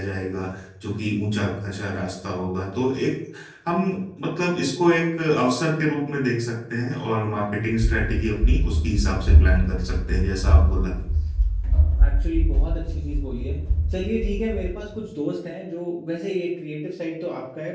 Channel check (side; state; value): both; identical; correlation 1.00